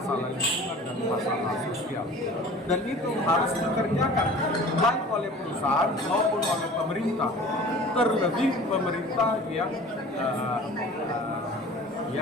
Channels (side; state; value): both; normal; correlation 0.43